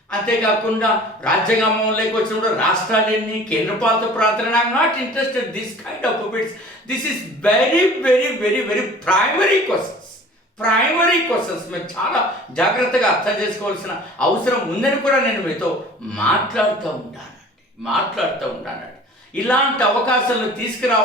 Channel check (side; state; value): both; normal; correlation 0.46